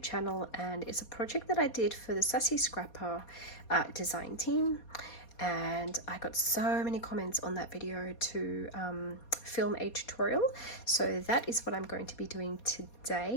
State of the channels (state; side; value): late; right; 4.2 ms